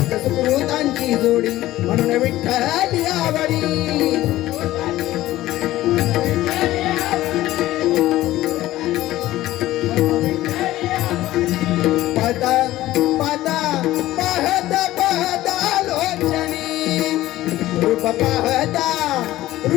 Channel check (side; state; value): right; quieter; 15.7 dB